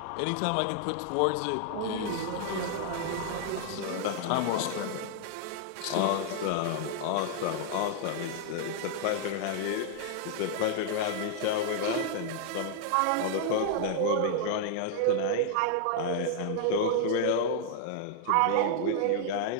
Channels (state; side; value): different; both; correlation -0.01